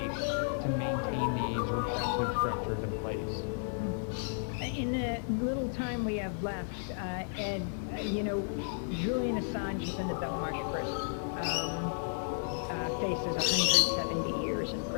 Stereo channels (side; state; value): right; silent; digital silence